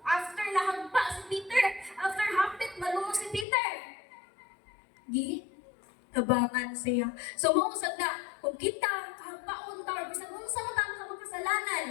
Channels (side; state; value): right; drops out; at 3.5 s